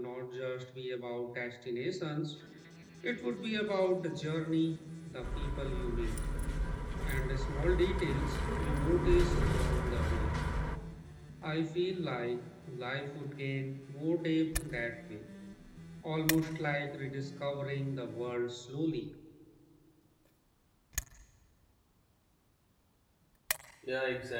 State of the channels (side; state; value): both; identical; correlation 1.00